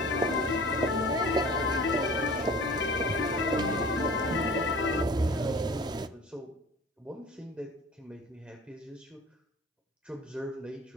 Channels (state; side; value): normal; both; correlation 0.42